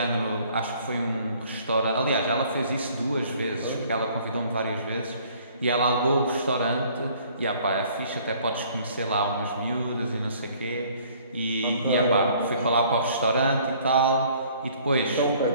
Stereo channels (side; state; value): both; inverted; correlation -0.57